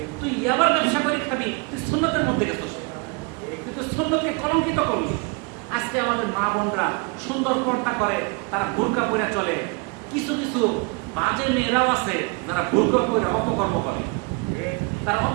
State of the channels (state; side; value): quieter; left; 31.0 dB